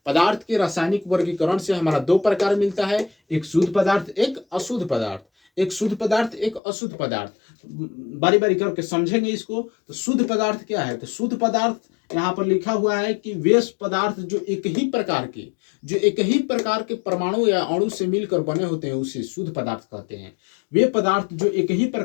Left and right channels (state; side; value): drops out; right; at 6.6 s